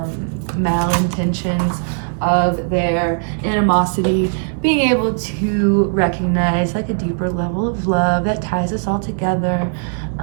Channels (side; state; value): left; silent; 64 dB below the other